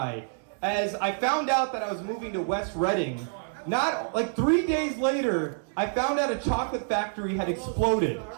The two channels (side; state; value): left; silent; 60 dB below the other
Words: as I found out that I was moving to West Reading. Not, like 3 days later, I found out a chocolate factory had exploded.